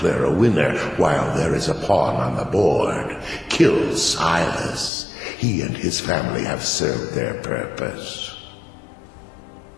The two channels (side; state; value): right; drops out; at 4.9 s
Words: a winner while there is a pawn on the board. Kill Silas. He and his family have served their purpose.